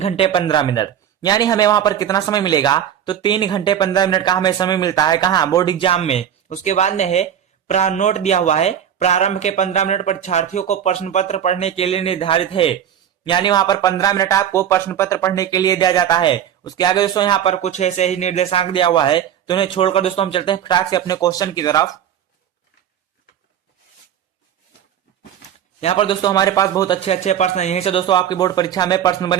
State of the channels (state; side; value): quieter; left; 9.6 dB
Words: 15 मिनट, यानी हमें वहां पर कितना समय मिलेगा। तो 3 घंटे 15 मिनट का हमें समय मिलता है कहाँ, बोर्ड एग्जाम में। उसके बाद में है नोट दिया हुआ है, प्रारंभ के 15 मिनट परीक्षार्थियों को प्रश्न पत्र पढ़ने के लिए निर्धारित है, यानी वहां पर 15 मिनट आपको प्रश्न पत्र पढ़ने के लिए दिया जाता है। उसके आगे दोस्तों यहाँ पर कुछ ऐसे ही निर्देशांक दिया हुआ है। तो उन्हें छोड़कर दोस्तों हम चलते हैं फटाक से अपने क्वेश्चन की तरफ। यहाँ पर दोस्तों हमारे पास बहुत अच्छे अच्छे प्रश्न हैं, यहीं से दोस्तों आपकी बोर्ड परीक्षा में प्रश्न